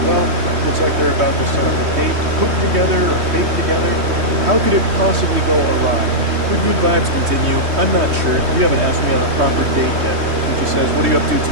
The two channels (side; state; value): left; late; 3.2 ms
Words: well. Looks like they're about to set up a date, cook together or bake together. How could it possibly go awry? The good vibes continue. I'm not sure. You haven't asked me on a proper date yet. And she says, "What are you up to